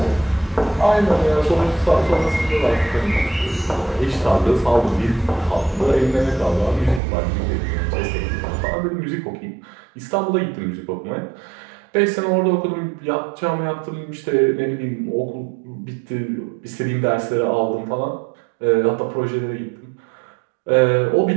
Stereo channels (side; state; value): left; drops out; at 7.0 s